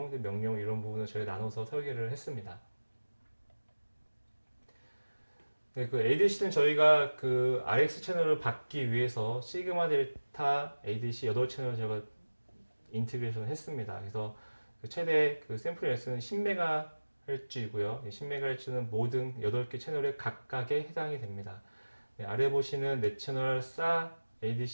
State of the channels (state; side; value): inverted; both; correlation -1.00